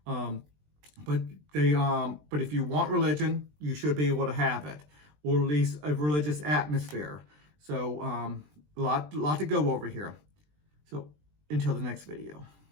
But if you want religion, you should be able to have it, or at least a religious atmosphere. So a lot to go over here. So until the next video.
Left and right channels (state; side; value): late; left; 20 ms